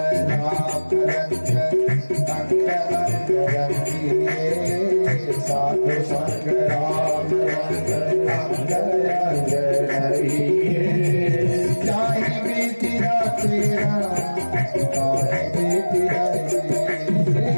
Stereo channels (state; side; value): inverted; both; correlation -1.00